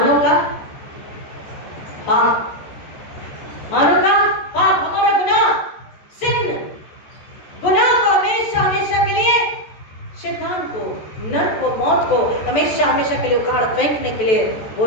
का पाप। मानव का पाप, हमारा गुनाह, सिन, गुनाह को हमेशा हमेशा के लिए, शैतान को, नरक को, मौत को हमेशा हमेशा के लिए उखाड़ फेंकने के लिए वो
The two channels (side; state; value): right; late; 14 ms